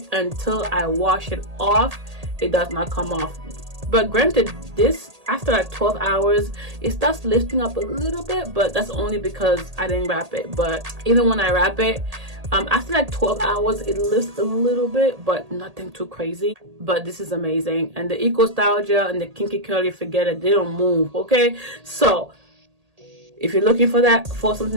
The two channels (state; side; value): late; left; 1.8 ms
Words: until I wash it off, it does not come off. But granted, this after like 12 hours it starts lifting up a little bit, but that's only because I didn't wrap it. But even when I wrap it, after like 12 hours it lifts a little bit, but nothing too crazy. But this is amazing. And the Eco Style Gel and the Kinky-Curly, forget it, they don't move. Okay, so if you're looking for that, for